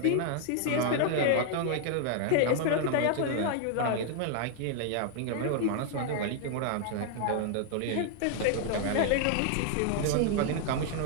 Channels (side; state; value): both; different; correlation 0.00